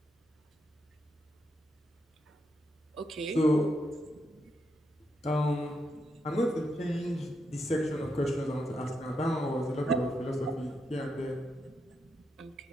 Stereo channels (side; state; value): both; normal; correlation 0.82